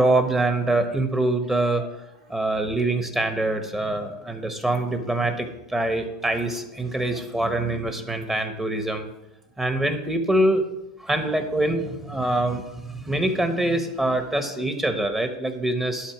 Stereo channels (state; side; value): normal; both; correlation 0.73